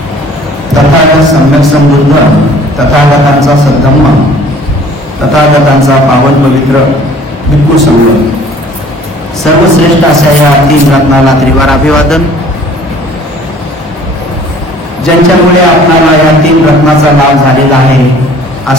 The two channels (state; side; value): normal; both; correlation 0.52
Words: तथागत सम्यक समृद्ध तथागतांचा सद्धम्म तथागतांचा पावन पवित्र भिक्खू संघ सर्वश्रेष्ठ अशा या तीन रत्नाला त्रिवार अभिवादन। ज्यांच्यामुळे आपल्याला या तीन रत्नाचा लाभ झालेला आहे